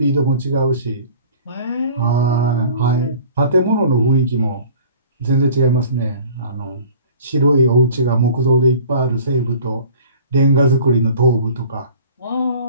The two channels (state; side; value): inverted; both; correlation -0.47